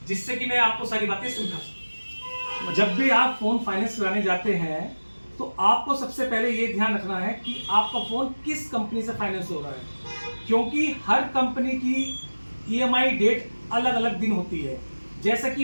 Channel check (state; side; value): inverted; both; correlation -1.00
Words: जिससे कि मैं आपको सारी बातें समझा सकूं। जब भी आप फोन फाइनेंस कराने जाते हैं तो आपको सबसे पहले ये ध्यान रखना है कि आपका फोन किस कंपनी से फाइनेंस हो रहा है, क्योंकि हर कंपनी की ईएमआई डेट अलग अलग दिन होती है। जैसे